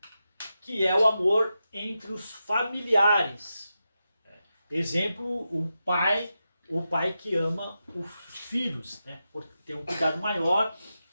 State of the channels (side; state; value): both; inverted; correlation -0.89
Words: que é o amor entre os familiares. Exemplo, o pai que ama os filhos, né? Porque tem um cuidado maior,